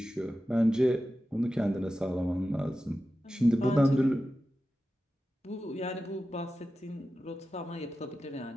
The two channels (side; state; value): both; normal; correlation 0.93